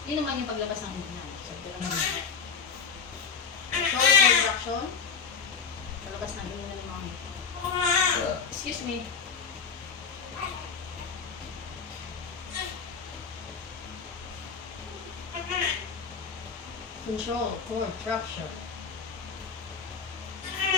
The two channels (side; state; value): right; quieter; 5.9 dB